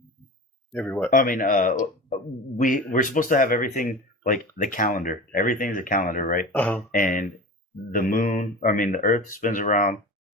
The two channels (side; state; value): both; normal; correlation 0.32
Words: Every what? I mean, we're supposed to have everything like the calendar. Everything's a calendar, right? And the moon, the Earth spins around